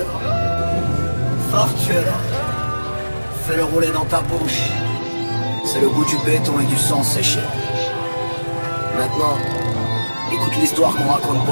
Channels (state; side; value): inverted; both; correlation -1.00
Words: Fortuna, fais-le rouler dans ta bouche. C'est le goût du béton et du sang séché. Maintenant, écoute l'histoire qu'on raconte pas